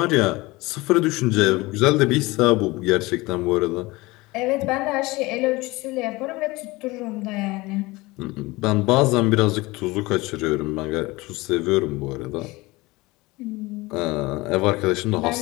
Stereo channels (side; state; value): right; quieter; 21.7 dB